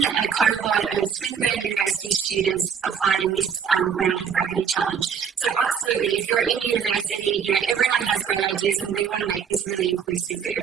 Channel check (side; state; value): left; quieter; 7.2 dB